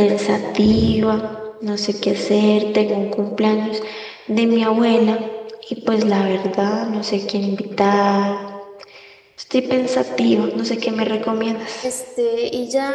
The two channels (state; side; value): identical; both; correlation 1.00